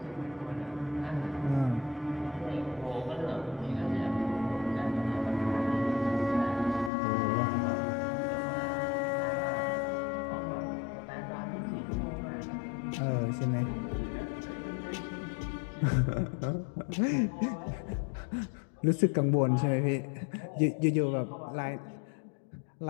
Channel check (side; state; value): right; drops out; at 6.9 s